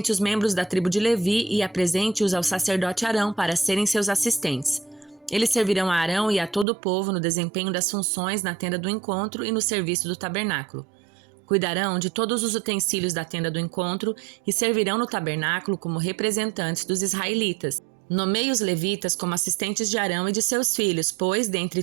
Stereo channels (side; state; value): left; drops out; at 6.7 s